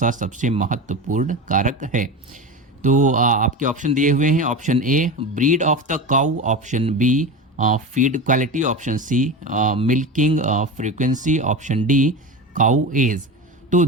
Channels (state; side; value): normal; both; correlation 0.25